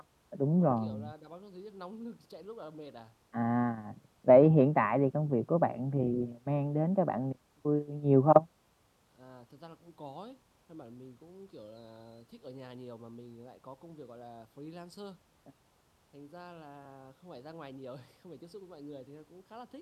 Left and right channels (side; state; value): both; identical; correlation 1.00